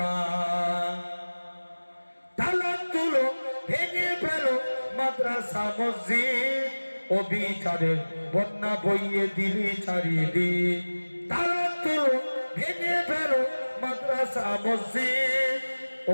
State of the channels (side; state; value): both; inverted; correlation -1.00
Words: তালা তুলো ভেঙে ফেলো মাদ্রাসা মসজিদ, অবিচারের বন্যা বইয়ে দিলি চারিদিক। তালা তুলো ভেঙে ফেলো মাদ্রাসা মসজিদ,